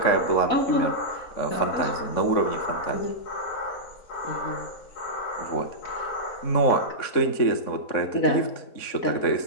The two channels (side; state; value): right; late; 3.7 ms